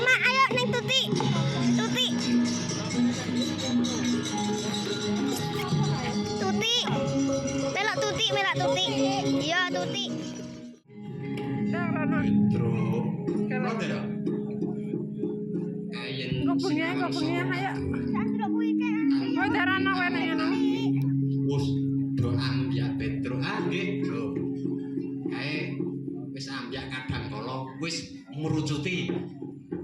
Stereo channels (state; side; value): identical; both; correlation 1.00